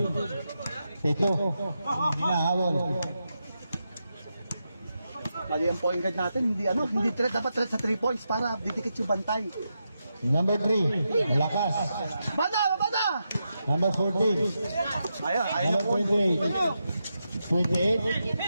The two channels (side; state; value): both; inverted; correlation -0.86